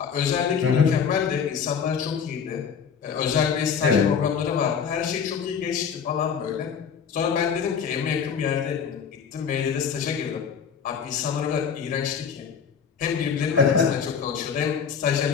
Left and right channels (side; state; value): right; quieter; 6.9 dB